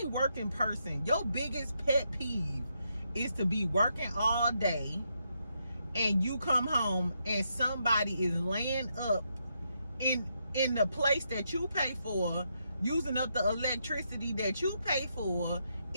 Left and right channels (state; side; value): inverted; both; correlation -0.80